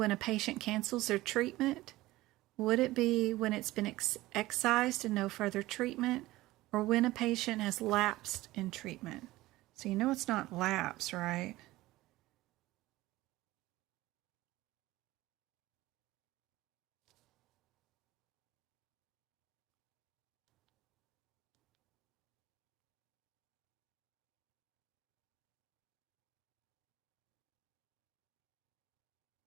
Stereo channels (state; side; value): quieter; left; 17.9 dB